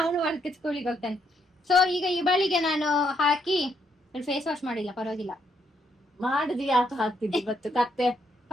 ವರ್ಕ್ ಸ್ಕೂಲಿಗೆ ಹೋಗ್ತಾನೆ. ಸೊ ಈಗ ಈ ಬಳಿಗೆ ನಾನು ಹಾಕಿ ಫೇಸ್ ವಾಶ್ ಮಾಡಿಲ್ಲ, ಪರವಾಗಿಲ್ಲ. ಮಾಡಿದ್ವಿ ಯಾಕೆ ಹಾಕ್ತಿದ್ವಿ ಇವತ್ತು ಕತ್ತೆ?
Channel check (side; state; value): both; normal; correlation 0.74